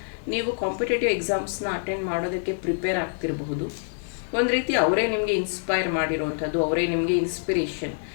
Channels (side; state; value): right; silent; digital silence